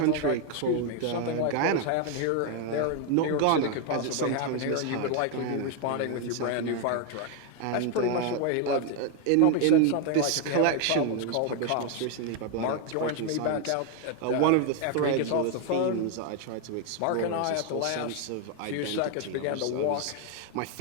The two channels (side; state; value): both; different; correlation 0.01